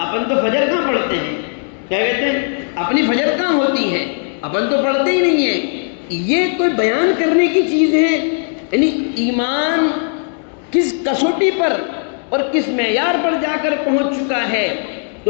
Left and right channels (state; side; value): silent; right; 56 dB below the other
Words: تو فجر کہاں پڑھتے ہیں، کیا کہتے ہیں اپنی فجر کہاں ہوتی ہے، اپن تو پڑھتے ہی نہیں ہیں، یہ کوئی بیان کرنے کی چیز ہے؟ یعنی ایمان کس کسوٹی پر اور کس معیار پر جا کر پہنچ چکا ہے۔